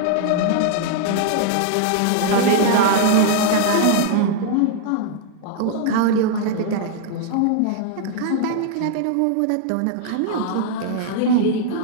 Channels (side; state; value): both; different; correlation 0.00